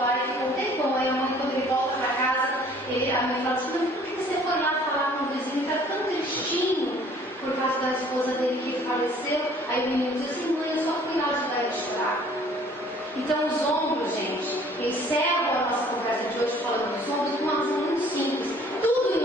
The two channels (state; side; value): normal; both; correlation 0.55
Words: e ficou um tempão. Aí a mãe, quando ele volta para casa, a mãe fala assim: por que você foi lá falar com o vizinho? Está tão tristinho por causa da esposa dele que faleceu. Aí o menino diz assim: mãe, eu só fui lá ajudar ele a chorar. Então os ombros, gente, encerram a nossa conversa de hoje falando dos ombros de uma razão muito simples. Tudo em